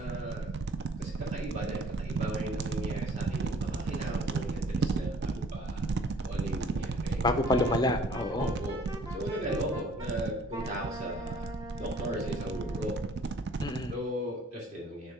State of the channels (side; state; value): both; normal; correlation 0.56